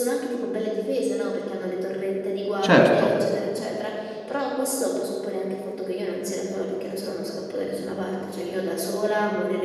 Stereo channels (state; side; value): identical; both; correlation 1.00